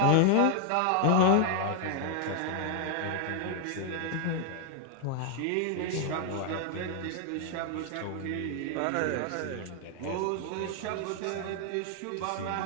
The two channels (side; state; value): both; different; correlation 0.00